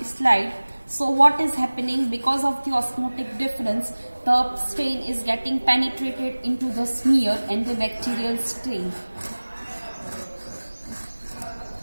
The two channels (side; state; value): both; inverted; correlation -1.00